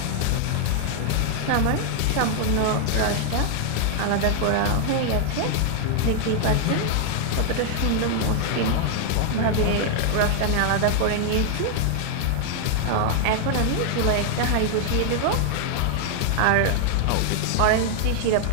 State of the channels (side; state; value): both; different; correlation 0.00